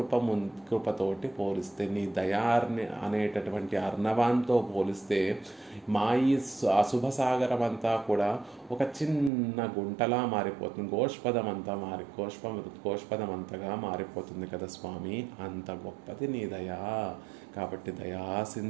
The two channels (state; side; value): drops out; left; at 9.3 s